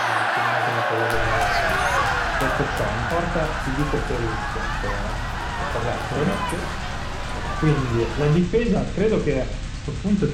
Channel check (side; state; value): both; identical; correlation 1.00